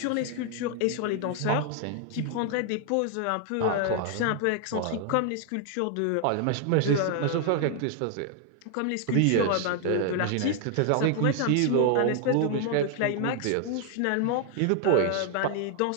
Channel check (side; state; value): both; different; correlation 0.00